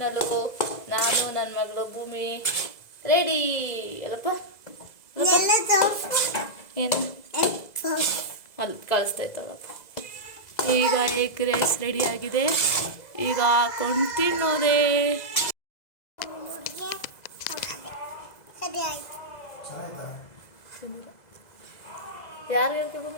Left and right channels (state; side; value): late; right; 2.0 ms